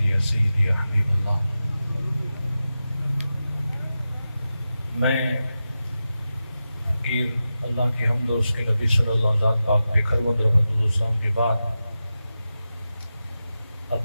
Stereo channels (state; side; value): inverted; both; correlation -0.92